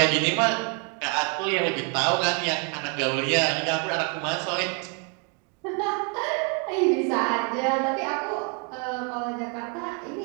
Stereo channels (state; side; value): quieter; left; 35.2 dB